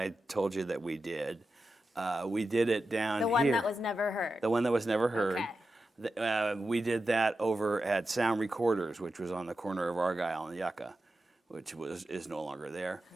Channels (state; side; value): normal; both; correlation 0.91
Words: told you that we did it down here. The one that was never heard. The one that was never heard. Okay. We did that over at Sound Recorders, which was on the corner of Argyle and Yucca, which is no longer there.